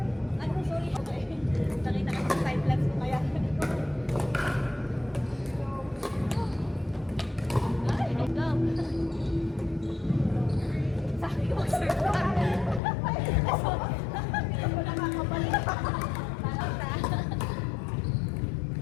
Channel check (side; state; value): right; drops out; at 12.8 s